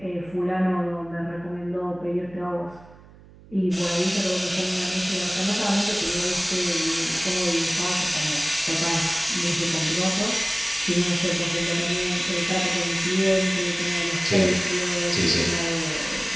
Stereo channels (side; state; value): right; noise; hum, 22 dB below the sound